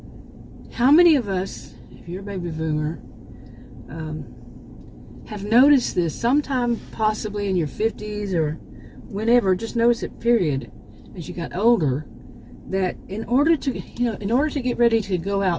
how many of us, if you're a baby boomer, have noticed this sometime possibly in your 50s or whenever, just notice it, period, as you got older, that in order to get ready to go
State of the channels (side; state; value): both; identical; correlation 1.00